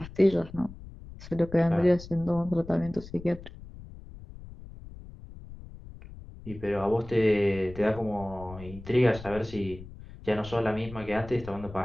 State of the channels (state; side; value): noise; left; rumble, 15 dB below the sound